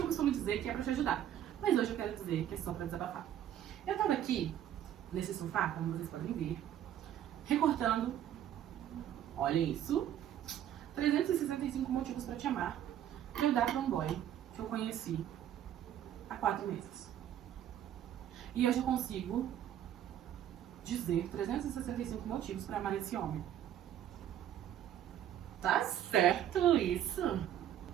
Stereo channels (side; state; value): left; quieter; 10.8 dB